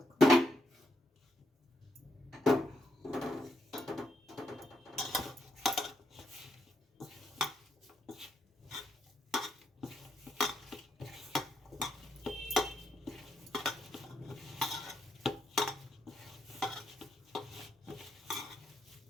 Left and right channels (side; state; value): both; normal; correlation 0.79